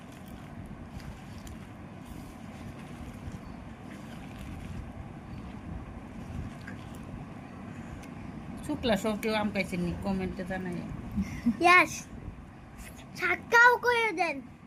শুকলা সব কেউ আম খাইছেন নি? কমেন্টে জানাই। ইয়েস, ছাক্কাও করে দেন।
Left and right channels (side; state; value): both; identical; correlation 1.00